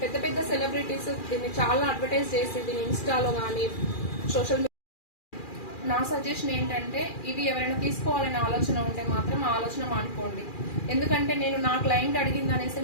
పెద్ద పెద్ద సెలబ్రిటీస్ దీన్ని చాలా అడ్వర్టైజ్ చేసి దీన్ని ఇన్స్టాలో కానీ సోషల్ మీడియా. నా సజెషన్ ఏంటంటే, ఇవి ఎవరైనా తీసుకోవాలనే ఆలోచన ఉంటే మాత్రం ఆ ఆలోచన మానుకోండి. ఎందుకంటే నేను నా క్లయింట్ అడిగింది అనేసి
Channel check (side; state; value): right; late; 2.4 ms